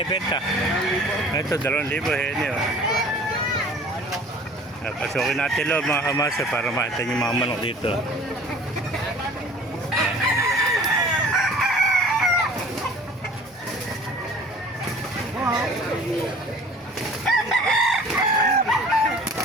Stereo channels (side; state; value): both; normal; correlation 0.47